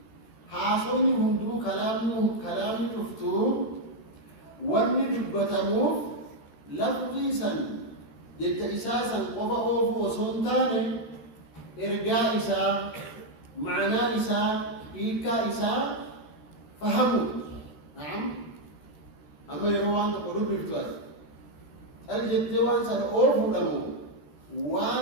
حاصوني هندو كلام تفتو واني دبتمو لفظي سن جت إساسا قفا أوفو وصنتاني إرقاء إسا معنى إسا إيكا إسا فهموا. نعم. أما يروان تقولوا بالتواس الجتوان سن أوفو لمو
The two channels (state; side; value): late; right; 13 ms